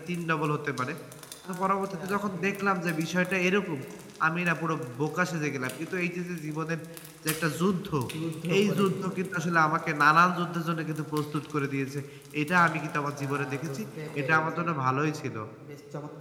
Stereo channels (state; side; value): identical; both; correlation 1.00